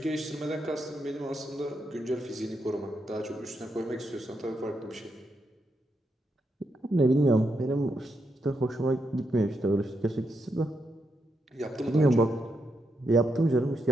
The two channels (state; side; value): normal; both; correlation 0.82